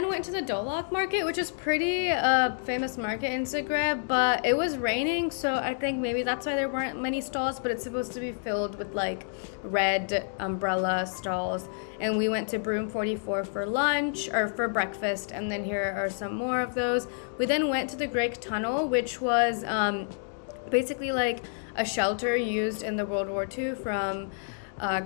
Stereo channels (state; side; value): silent; right; digital silence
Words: went to the Dolac market, which is pretty famous market in Zagreb, but it was raining, so I think maybe that's why there weren't many stalls, but it's supposed to be filled with like red umbrella stalls. And we went to Broom 44 for lunch, or for breakfast, and then here are some more of those. We then went to the Grič Tunnel, which was basically like a shelter used in the World War II from